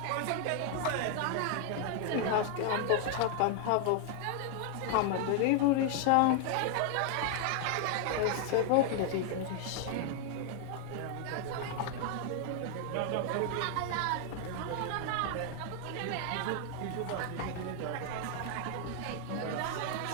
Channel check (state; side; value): different; both; correlation 0.00